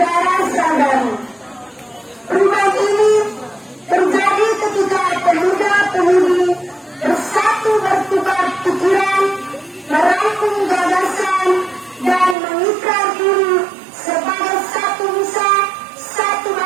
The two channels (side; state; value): left; drops out; at 12.4 s